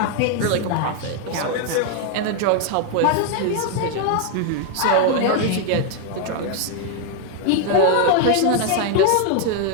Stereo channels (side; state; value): both; different; correlation 0.00